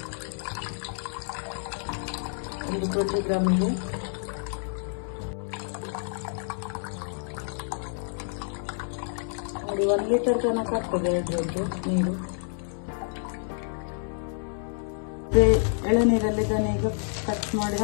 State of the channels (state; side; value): silent; right; 59 dB below the other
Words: 20 ಗ್ರಾಮಿಗೆ ನೋಡಿ 1 ಲೀಟರ್ ತನಕ ಆಗ್ತದೆ ಅದರದ್ದು ನೀರು. ಎಳೆನೀರಲ್ಲಿ ಇದನ್ನು ಈಗ ಕಟ್ ಮಾಡಿ